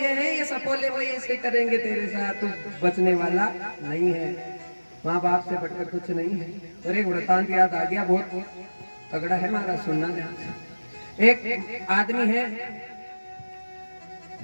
हैं ये सपोले, वो ऐसे करेंगे तेरे साथ, तू बचने वाला नहीं है। माँ बाप से बढ़कर कुछ नहीं है। और एक वृतांत याद आ गया, बहुत तगड़ा है हमारा, सुनना ध्यान से। एक आदमी है,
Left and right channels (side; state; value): both; inverted; correlation -1.00